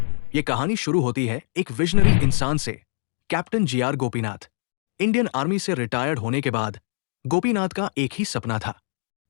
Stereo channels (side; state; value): right; silent; 63 dB below the other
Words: ये कहानी शुरू होती है एक विजनरी इंसान से, captain GR Gopinath. Indian army से रिटायर्ड होने के बाद गोपीनाथ का एक ही सपना था,